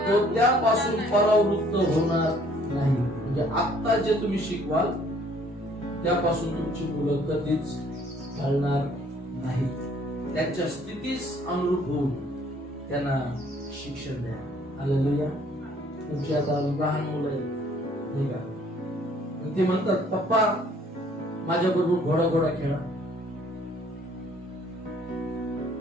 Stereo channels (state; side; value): normal; both; correlation 0.60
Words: त्यापासून परावृत्त होणार नाही. म्हणजे आता जे तुम्ही शिकवाल त्यापासून तुमची मुलं कधीच ढळणार नाही. त्यांच्या स्थितीस अनुरूप होऊन त्यांना शिक्षण द्या. हालेलुया. तुमची आता लहान मुलं आहेत नाही का, ते म्हणतात पप्पा माझ्या बरोबर घोडा खेळा.